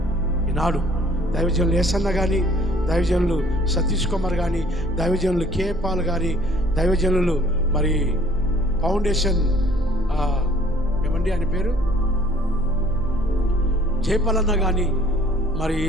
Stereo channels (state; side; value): normal; both; correlation 0.56